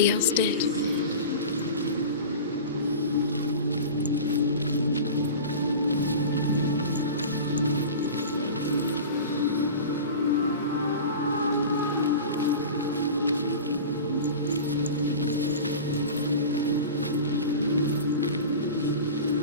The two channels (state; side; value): inverted; both; correlation -0.33